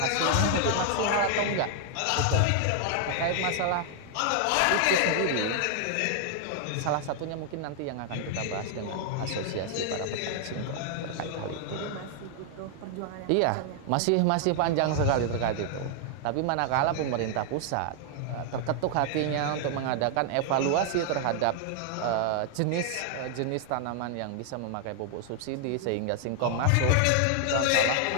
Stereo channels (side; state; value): both; different; correlation 0.00